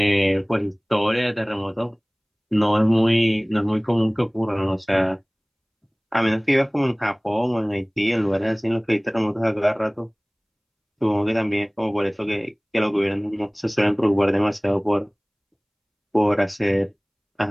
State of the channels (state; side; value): identical; both; correlation 1.00